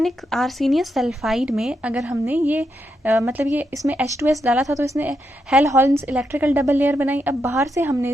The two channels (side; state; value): both; normal; correlation 0.83